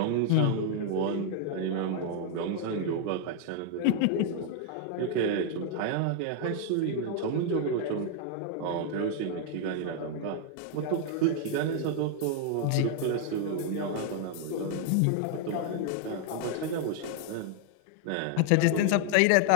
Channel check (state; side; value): different; both; correlation 0.00